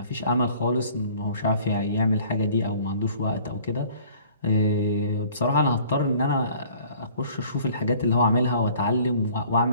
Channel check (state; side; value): inverted; both; correlation -0.53